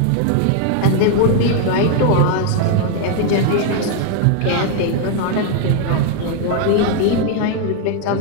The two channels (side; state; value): both; different; correlation 0.00